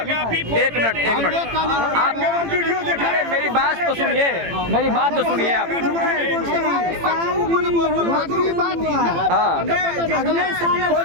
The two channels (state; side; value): late; left; 18 ms